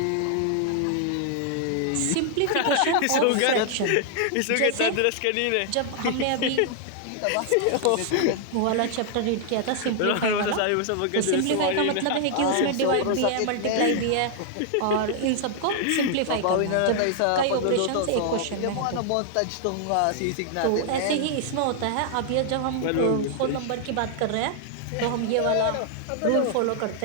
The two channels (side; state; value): both; different; correlation 0.00